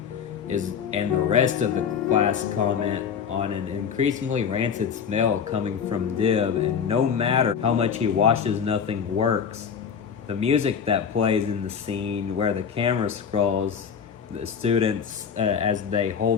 and the rest of the class comment on an increasingly rancid smell coming from Dib, and no matter how much he washes, nothing works. The music that plays in the scene where the camera scrolls the students as they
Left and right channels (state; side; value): quieter; right; 7.0 dB